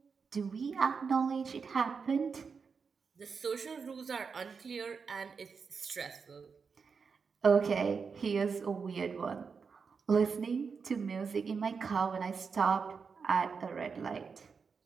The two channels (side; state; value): left; quieter; 5.5 dB